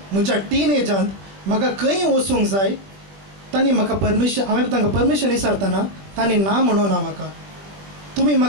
म्हज्या टीनेजांत म्हाका खंय वचूंक जाय तांणी म्हाका परमिशन, हांवें तांकां परमिशन विचारतना तांणी ना म्हणूना म्हाका. तुमी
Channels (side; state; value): left; late; 20 ms